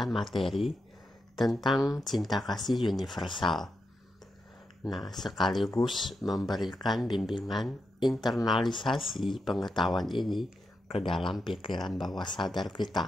materi tentang cinta kasih universal. Nah, sekaligus memberikan bimbingan internalisasi pengetahuan ini ke dalam pikiran bawah sadar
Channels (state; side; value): normal; both; correlation 0.86